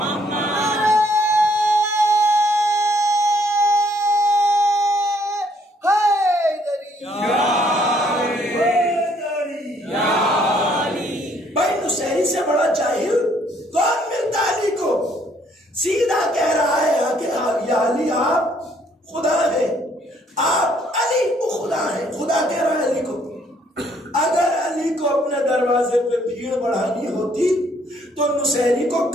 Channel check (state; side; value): normal; both; correlation 0.66